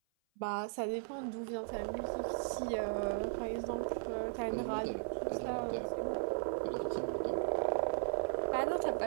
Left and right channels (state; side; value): silent; left; 53 dB below the other